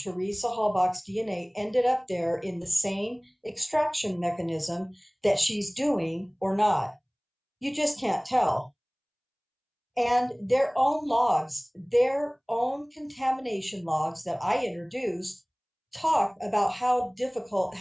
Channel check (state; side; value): identical; both; correlation 1.00